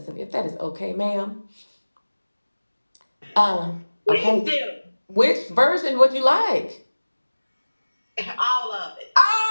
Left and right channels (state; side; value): inverted; both; correlation -1.00